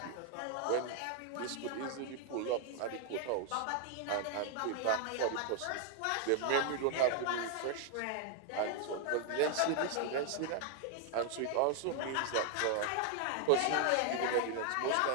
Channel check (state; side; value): different; both; correlation 0.00